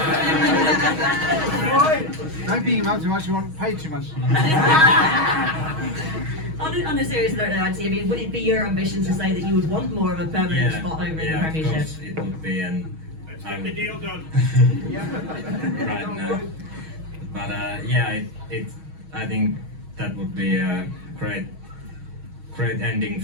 Don't beat him up too much, you won't pay too much. On a serious note, though, Antti, I mean, would it be your ambition to say that you would want more of a permanent spot over in the Premiership? Yeah, of course it would be, and let's get the deal done. Right now. But yeah, I think that would be a great ending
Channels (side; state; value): left; late; 6.3 ms